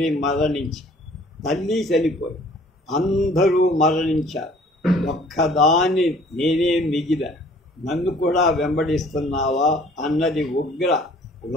మరణించి, తల్లి చనిపోయి, అందరూ మరణించారు. ఒక్కదాన్ని నేనే మిగిలా, నన్ను కూడా వెంబడిస్తున్నావా అన్నది ఉగ్ర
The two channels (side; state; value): both; normal; correlation 0.54